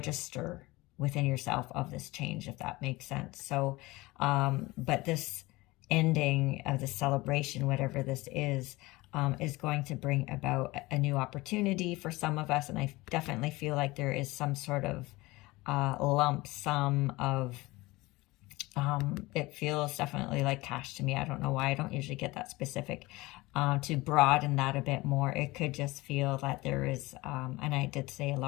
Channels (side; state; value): right; quieter; 21.1 dB